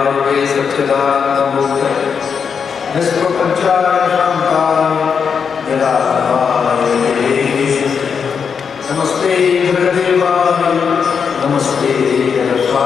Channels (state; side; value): quieter; right; 6.4 dB